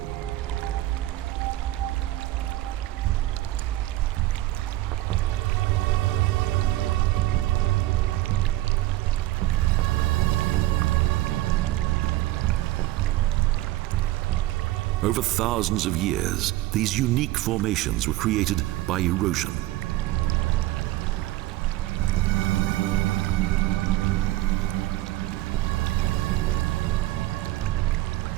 Over thousands of years, these unique formations were created by erosion.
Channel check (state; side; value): quieter; left; 16.2 dB